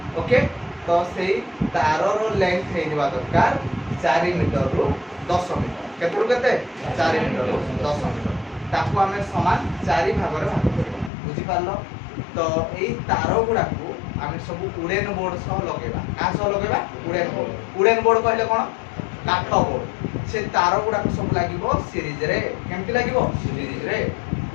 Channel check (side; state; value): right; drops out; at 11.1 s